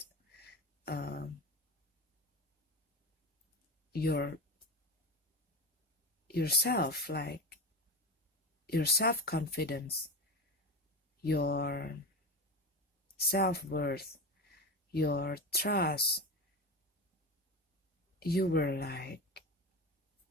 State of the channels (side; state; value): both; normal; correlation 0.23